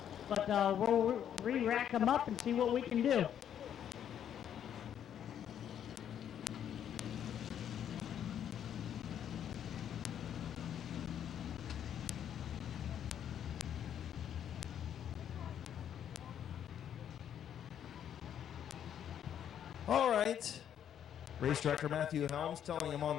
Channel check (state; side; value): quieter; right; 9.5 dB